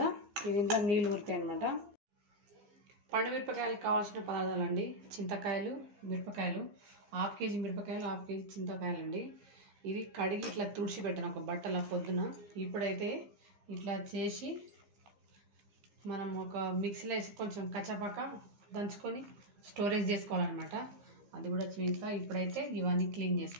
ఇది ఇంట్లో నీళ్ళు ఊరుతాయి అనమాట. పండు మిరపకాయలకు కావాల్సిన పదార్థాలు అండి: చింతకాయలు, మిరపకాయలు, 1/2 కేజీ మిరపకాయలు, 1/2 కేజీ చింతకాయలు అండి. ఇది కడిగి ఇట్లా తుడిచి పెట్టాను ఒక బట్టల పొద్దున. ఇప్పుడైతే ఇట్లా చేసి మనం ఒక మిక్సీలో వేసి కొంచెం కచ్చపక్క దంచుకొని స్టోరేజ్ చేసుకోవాలన్నమాట. అది కూడా చూపిస్తా. ఇప్పుడైతే ఇవన్నీ క్లీన్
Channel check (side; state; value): left; late; 15 ms